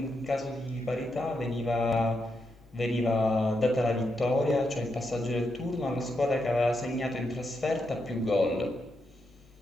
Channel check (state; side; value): normal; both; correlation 0.83